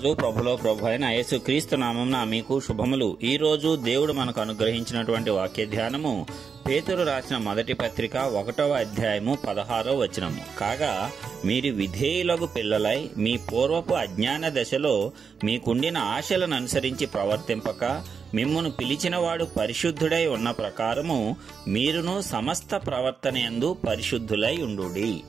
ప్రభులో ప్రభు అయిన యేసుక్రీస్తు నామమున మీకు శుభములు. ఈ రోజు దేవుడు మనకు అనుగ్రహించినటువంటి వాక్య ధ్యానము పేతురు రాసిన మొదటి పత్రిక 1వ అధ్యాయము 16వ వచనము. కాగా మీరు విధేయులకు పిల్లలై మీ పూర్వపు అజ్ఞాన దశలో మీకుండిన ఆశలను అనుసరించి ప్రవర్తింపక మిమ్మును పిలిచినవాడు పరిశుద్ధుడై ఉన్న ప్రకారము మీరును సమస్త ప్రవర్తనయందు పరిశుద్ధులై ఉండుడి.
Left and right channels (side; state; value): left; quieter; 6.0 dB